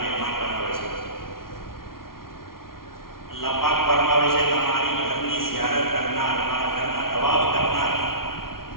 મહેમાન બનાવે છે। અલ્લાહ પાક ફરમાવે છે તમારી ઘરની ઝિયારત કરનાર, મારા ઘરના તવાફ કરનાર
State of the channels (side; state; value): right; late; 0.92 ms